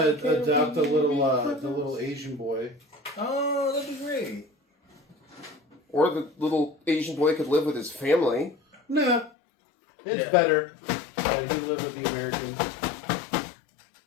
Can't adopt the we little be friends? the little Asian boy. Oh, that'd be great. Or the little Asian boy could live with his family. Nah. It's Yeah. better that he lived with the Americans.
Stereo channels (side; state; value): right; drops out; at 9.3 s